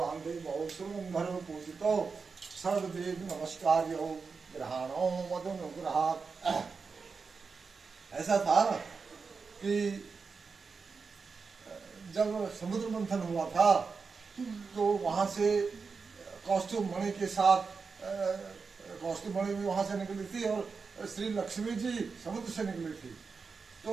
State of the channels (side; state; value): left; quieter; 5.0 dB